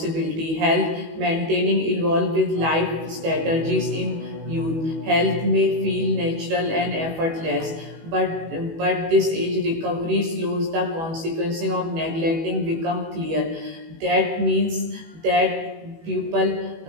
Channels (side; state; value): left; late; 19 ms